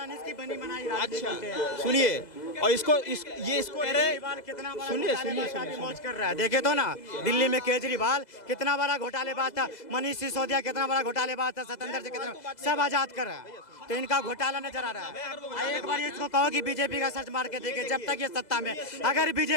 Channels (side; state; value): right; late; 2.0 ms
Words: बनी बनाई अच्छा सुनिए, और इसको इसको कह रहे, कितना बड़ा सुनिए घोटालेबाज सुनिए का मौज कर रहा है। देखे तो ना दिल्ली में केजरीवाल कितना बड़ा घोटालेबाज था, मनीष सिसोदिया कितना बड़ा घोटालेबाज था, सतेंद्र से कितना, सब आजाद कर रहा है। तो इनका घोटाला नजर आ रहा है। एक बार इसको कहो कि बीजेपी का सर्च मार के देखे, जब तक ये सत्ता में, अगर